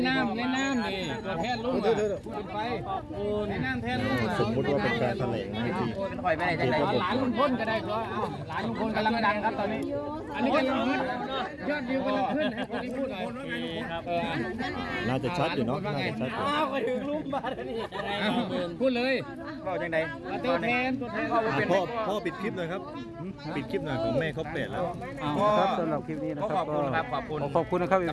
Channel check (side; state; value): both; identical; correlation 1.00